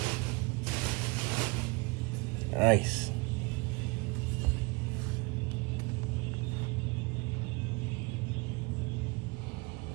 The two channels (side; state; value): left; quieter; 27.8 dB